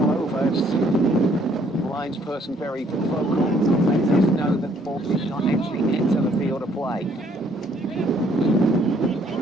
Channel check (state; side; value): normal; both; correlation 0.65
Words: Linesperson very vocal. Let us know that the ball did not actually enter the field of play.